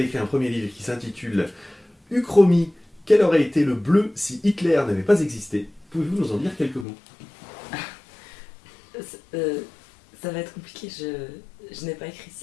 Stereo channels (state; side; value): drops out; right; at 6.9 s